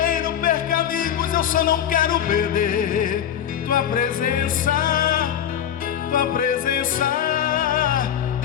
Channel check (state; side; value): quieter; right; 9.6 dB